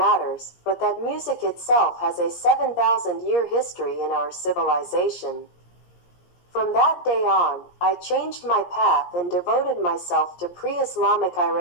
but that music itself has a 7,000-year history in our civilization. From that day on, I changed my path and devoted myself to pre-Islamic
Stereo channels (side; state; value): right; late; 17 ms